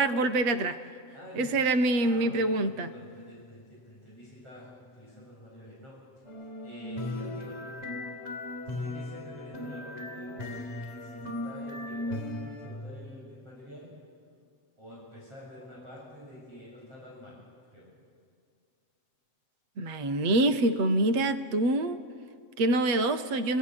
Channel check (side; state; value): left; late; 7.7 ms